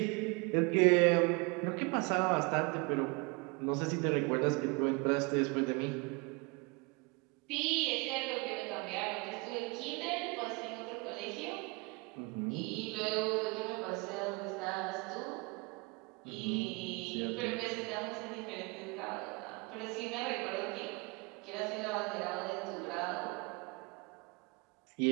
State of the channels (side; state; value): left; quieter; 29.2 dB